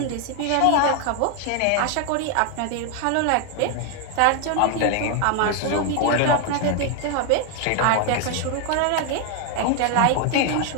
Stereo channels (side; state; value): both; different; correlation 0.00